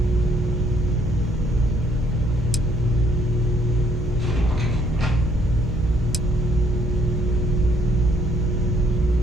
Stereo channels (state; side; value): normal; both; correlation 0.67